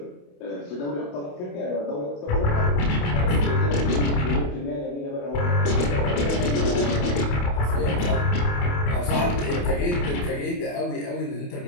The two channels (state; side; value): late; right; 28 ms